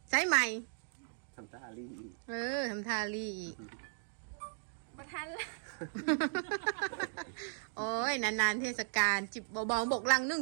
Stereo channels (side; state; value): left; silent; digital silence